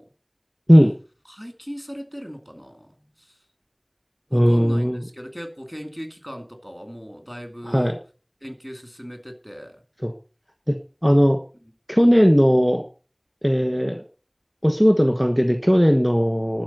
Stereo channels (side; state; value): both; identical; correlation 1.00